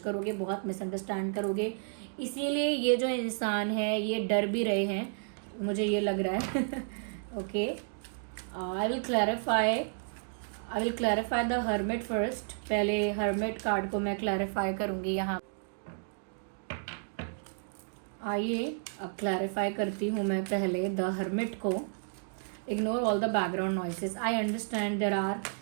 बहुत मिसअंडरस्टैंड करोगे। इसीलिए ये जो इंसान है ये डर भी रहे हैं, मुझे ये लग रहा है। Okay, I will clarify the hermit first. पहले हर्मिट कार्ड को मैं क्लैरिफाई करूँगी यहाँ। आइए अब क्लैरिफाई करती हूँ मैं पहले द हर्मिट को। Ignore all the background noises, I understand there are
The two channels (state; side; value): silent; left; digital silence